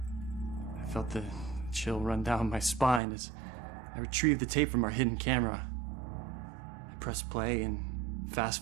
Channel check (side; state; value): left; drops out; at 3.0 s